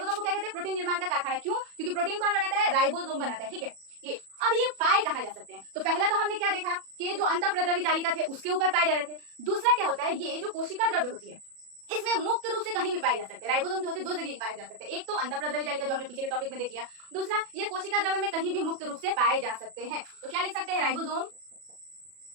को क्या कहते हैं? प्रोटीन निर्माण का कारखाना। क्यों? क्योंकि प्रोटीन कौन बनाता है? राइबोसोम बनाता है, ठीक है? ये अब ये पाए कहा जा सकते हैं। तो पहला तो हमने क्या देखा कि ये जो अंतःप्रद्रवी जालिका थे उसके ऊपर पाए जा रहे थे। दूसरा क्या होता है? ये जो कोशिका द्रव्य होती है इसमें मुक्त रूप से कहीं भी पाए जा सकते हैं। राइबोसोम जो होते हैं दो जगह पाए जा सकते हैं, एक तो अंतःप्रद्रवी जालिका जो हमने पिछले टॉपिक में देख लिया, दूसरा ये कोशिका द्रव्य में कहीं भी मुक्त रूप से पाए जा सकते हैं। तो क्या लिख सकते हैं?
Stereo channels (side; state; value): left; late; 37 ms